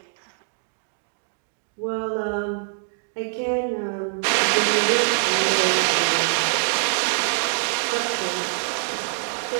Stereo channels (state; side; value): silent; left; digital silence